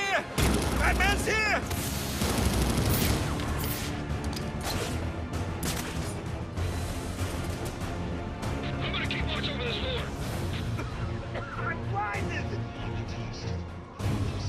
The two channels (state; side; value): identical; both; correlation 1.00